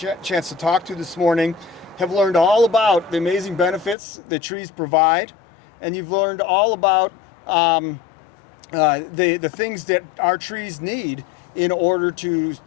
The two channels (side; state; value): right; drops out; at 4.0 s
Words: to talk to this morning, have learned all about the amazing benefits that trees provide, and you've learned all about the things that our trees need in order to